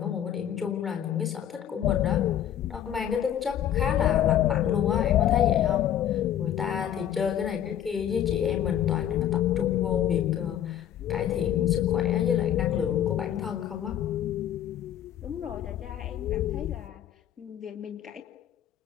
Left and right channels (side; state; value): right; quieter; 10.6 dB